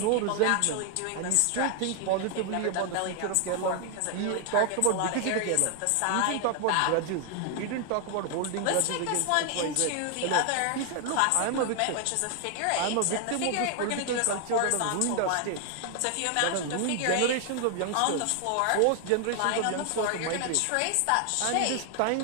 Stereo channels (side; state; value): both; different; correlation 0.00